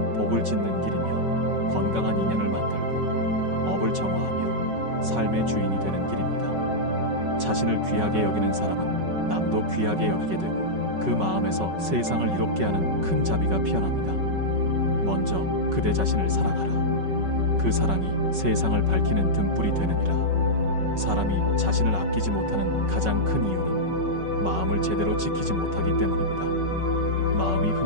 복을 짓는 길이며 건강한 인연을 만들고 업을 정화하며 삶의 주인이 되는 길입니다. 자신을 귀하게 여기는 사람은 남도 귀하게 여기게 되고 그 마음에서 세상을 이롭게 하는 큰 자비가 피어납니다. 먼저 그대 자신을 사랑하라. 그 사랑이 세상을 밝히는 등불이 되느니라. 사람이 자신을 아끼지 못하는 가장 큰 이유는 마음을 제대로 지키지 못하기 때문입니다. 마음이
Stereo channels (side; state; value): left; late; 5.3 ms